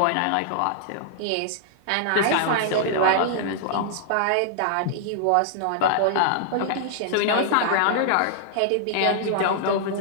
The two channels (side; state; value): both; different; correlation -0.01